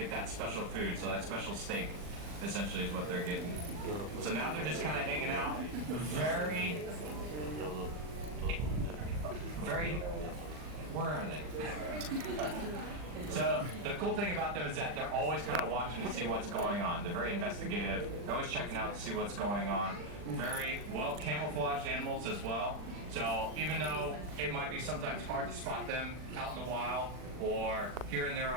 that special food, so that special steak essentially is what they're getting. So now they're just kind of hanging out. Very, where are they? So the cool thing about them is that they're always kind of watching to see what's going on. They're very investigative. They're always checking out to see what's going on. Very well camouflaged animals as well. So even though it might be sometimes hard to spot them out in the wild or here in their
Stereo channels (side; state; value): left; late; 40 ms